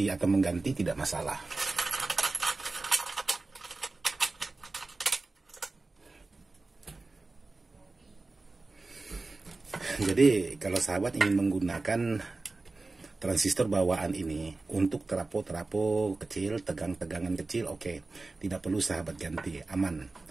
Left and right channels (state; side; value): quieter; left; 3.4 dB